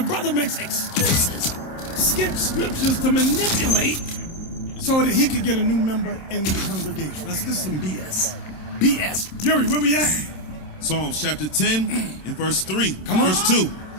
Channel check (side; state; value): right; late; 27 ms